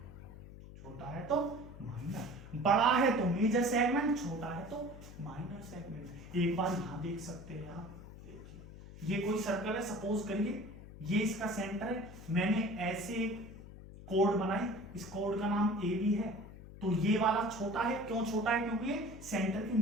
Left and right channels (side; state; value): left; noise; hum, 15 dB below the sound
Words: छोटा है तो माइनर, बड़ा है तो मेजर सेगमेंट, छोटा है तो माइनर सेगमेंट। एक बार यहां देख सकते हैं आप, देखिए ये कोई सर्कल है, सपोज करिए ये इसका सेंटर है, मैंने ऐसे एक कोड बनाई, इस कोड का नाम ए बी है, तो ये वाला छोटा है, क्यों छोटा है? क्योंकि ये सेंटर के